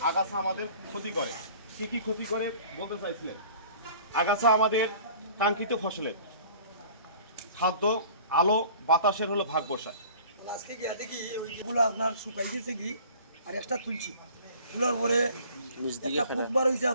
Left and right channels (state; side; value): inverted; both; correlation -0.48